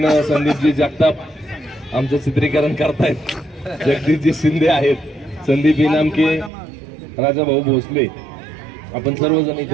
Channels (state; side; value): drops out; left; at 6.5 s